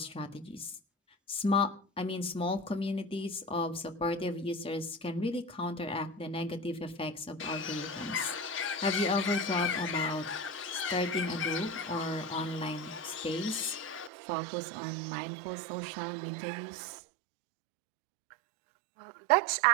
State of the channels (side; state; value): left; drops out; at 14.1 s